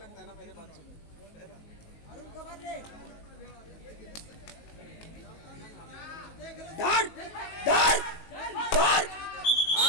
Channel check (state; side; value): late; right; 19 ms